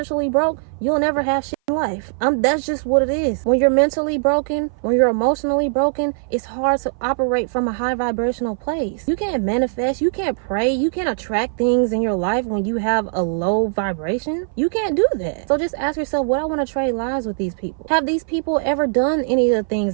broke, you'll never have shit in life. That's just what it is. When you're mentally broken, when you're emotionally broken, it's hard to operate from a high vibrational place. You can't manifest, you can't pray, you can't attract things in your life when you have a low vibration. You can't do that. So just ask yourself, would I want to trade lives with these people? Have these people ever done any of the things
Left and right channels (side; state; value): left; silent; 58 dB below the other